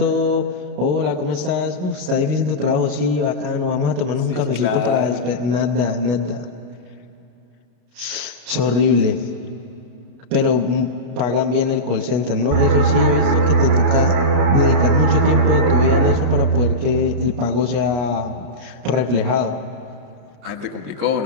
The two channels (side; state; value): left; late; 33 ms